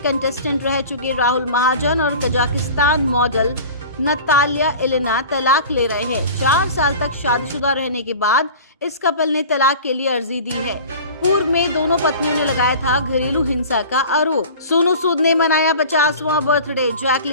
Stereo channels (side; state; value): both; inverted; correlation -0.39